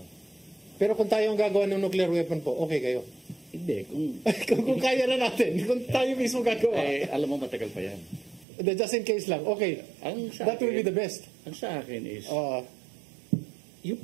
Pero kung tayo ang gagawa ng nuclear weapon po, okay kayo? Hindi. kung kaya na natin, kung tayo mismo gagawa. Alam mo, matagal pa yan. Just in case lang, okay. That will be the best. Ang sa akin is, Oo. yung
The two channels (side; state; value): left; drops out; at 8.5 s